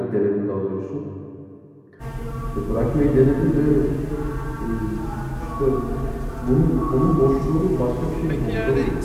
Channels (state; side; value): identical; both; correlation 1.00